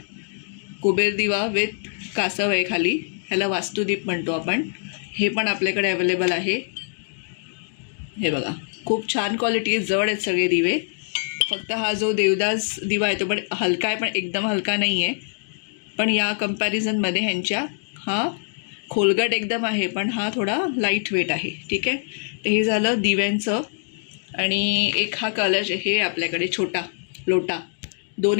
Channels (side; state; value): right; silent; digital silence